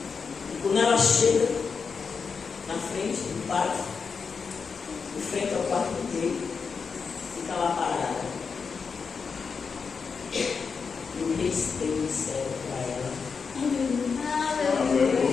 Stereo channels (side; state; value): right; quieter; 5.5 dB